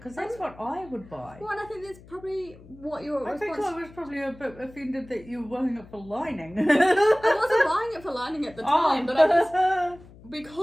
that's what I would buy. Well, and I think that's probably what your response... I think I was probably a bit offended that you were buying it for lining. I wasn't buying it for lining at the time, but I just...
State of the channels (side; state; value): left; noise; hum, 21 dB below the sound